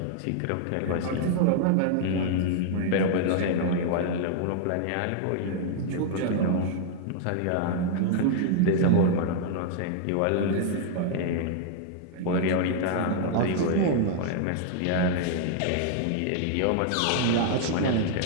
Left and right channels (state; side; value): different; both; correlation -0.01